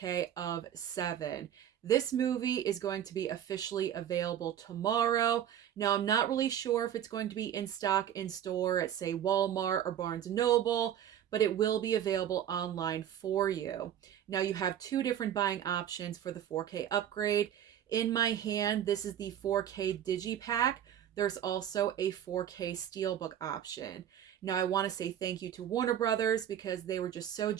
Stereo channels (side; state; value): left; quieter; 10.2 dB